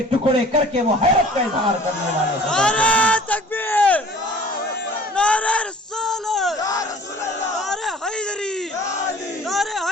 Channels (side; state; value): both; normal; correlation 0.48